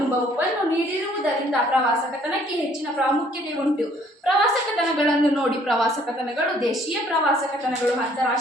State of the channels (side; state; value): both; normal; correlation 0.61